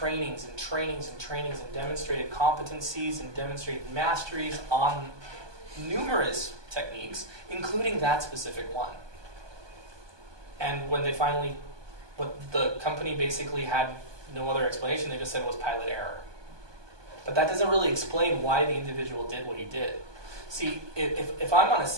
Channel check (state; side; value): late; left; 1.2 ms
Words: and demonstrated competencies and demonstrated masteries on numerous techniques, including that specific one. And when the company basically had no other explanation, they just said it was pilot error. But that doesn't really explain why the individual did what he did. See, if I'm on a